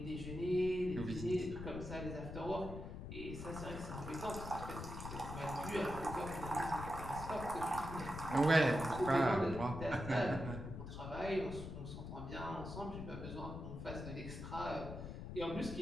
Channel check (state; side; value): noise; left; rumble, 8 dB below the sound